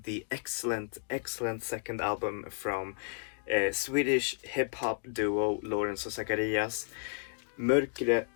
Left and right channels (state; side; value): silent; right; 56 dB below the other